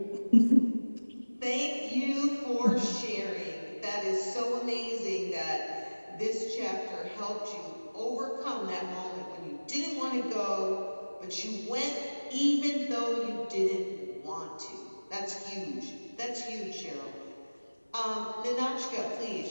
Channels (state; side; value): inverted; both; correlation -1.00